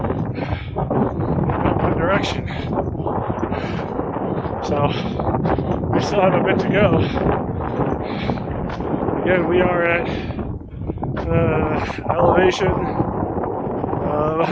one direction. So we still have a bit to go. Again, we are at elevation of,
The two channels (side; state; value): both; identical; correlation 1.00